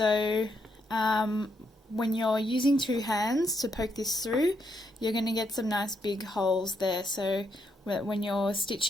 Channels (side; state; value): both; normal; correlation 0.78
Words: when you're using two hands to poke this through, you're going to get some nice big holes there. So when you're